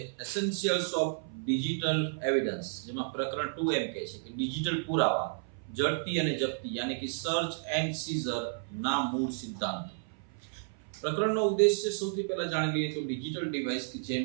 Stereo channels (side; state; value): left; silent; 55 dB below the other